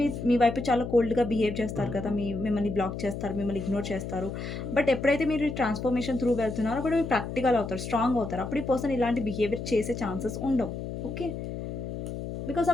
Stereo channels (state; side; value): noise; left; hum, 6 dB below the sound